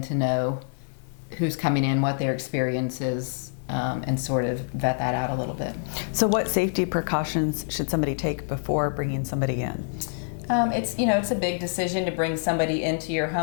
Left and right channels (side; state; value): right; silent; digital silence